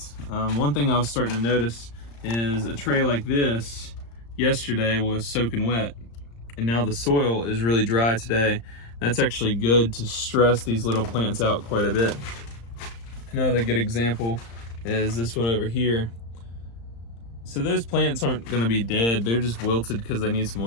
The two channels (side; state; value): right; late; 35 ms